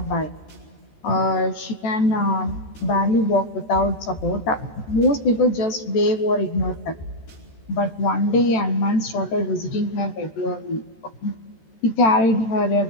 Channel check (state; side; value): late; right; 13 ms